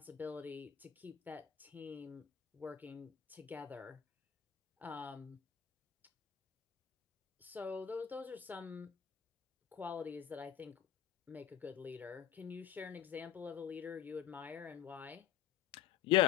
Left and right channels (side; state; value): right; quieter; 10.1 dB